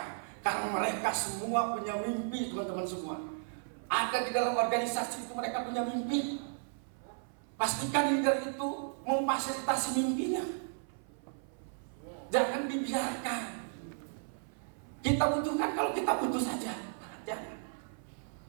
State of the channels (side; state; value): left; silent; 55 dB below the other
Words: Karena mereka semua punya mimpi, teman-teman semua. Ada di dalam organisasi itu mereka punya mimpi. Pastikan leader itu memfasilitasi mimpinya. Jangan dibiarkan. Kita butuhkan kalau kita butuh saja. Jangan.